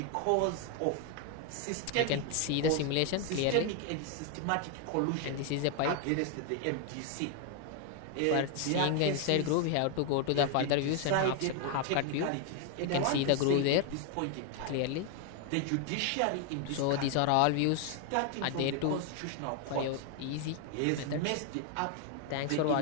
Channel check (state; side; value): different; both; correlation 0.01